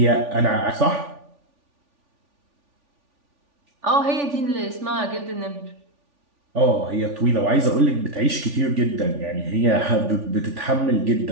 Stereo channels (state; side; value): late; left; 3.5 ms